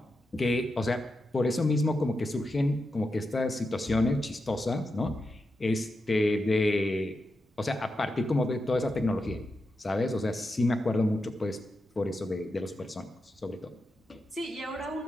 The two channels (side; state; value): both; normal; correlation 0.88